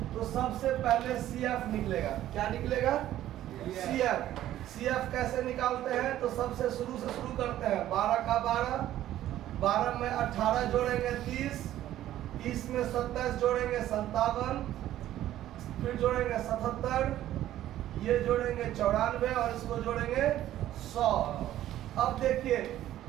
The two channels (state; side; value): quieter; left; 13.1 dB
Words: तो सबसे पहले CF निकलेगा। क्या निकलेगा? CF। CF कैसे निकालते हैं? तो सबसे शुरू से शुरू करते हैं। 12 का 12, 12 में 18 जोड़ेंगे 30, 30 में 27 जोड़ेंगे 57, फिर जोड़ेंगे 77, ये जोड़ेंगे 94 और इसको जोड़ेंगे 100। अब देखिए